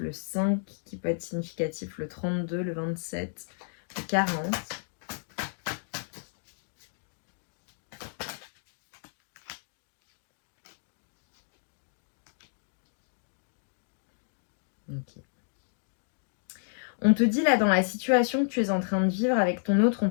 5 qui peut être significatif, le 32, le 27, le 40. Ok. On te dit là dans la situation que tu es en train de vivre avec ton autre, on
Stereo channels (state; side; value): silent; right; digital silence